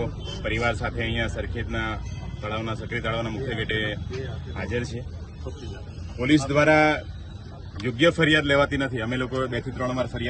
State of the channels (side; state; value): both; identical; correlation 1.00